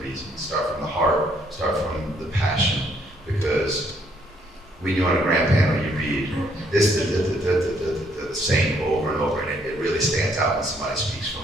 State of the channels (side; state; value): both; normal; correlation 0.68